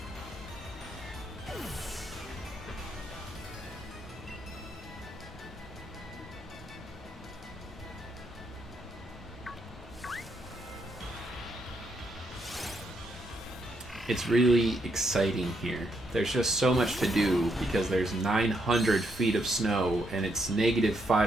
It's really exciting here. There's just so much to do because there's 900 feet of snow and it's negative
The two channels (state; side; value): normal; both; correlation 0.77